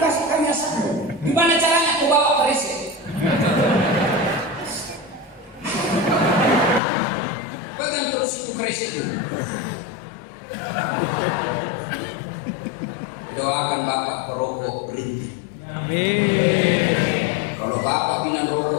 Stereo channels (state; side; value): drops out; right; at 6.8 s